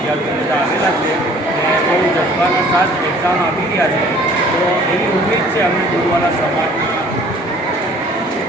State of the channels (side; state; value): both; normal; correlation 0.53